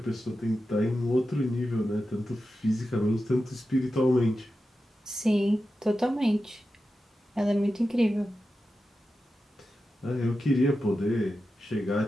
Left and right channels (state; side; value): normal; both; correlation 0.91